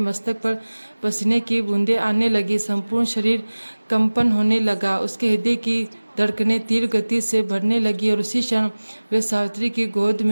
पर पसीने की बूंदें आने लगी। संपूर्ण शरीर कंपन होने लगा। उसके हृदय की धड़कनें तीव्र गति से बढ़ने लगी और उसी क्षण वह सावित्री की गोद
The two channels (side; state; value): both; inverted; correlation -1.00